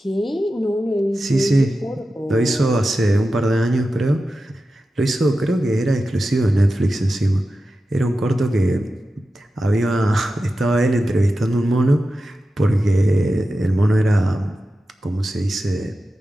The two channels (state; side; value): normal; both; correlation 0.92